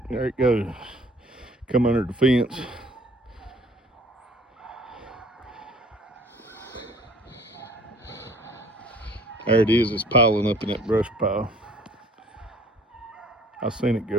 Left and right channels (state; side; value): normal; both; correlation 0.54